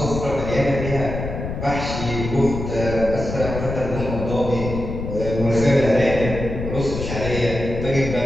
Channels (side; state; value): left; noise; rumble, 5 dB below the sound